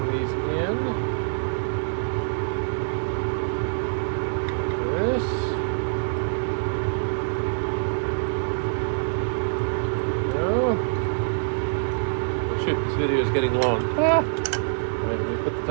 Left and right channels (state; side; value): silent; left; digital silence